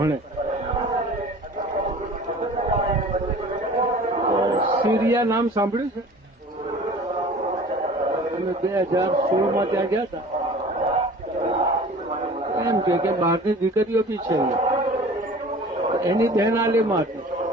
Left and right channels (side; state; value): both; normal; correlation 0.44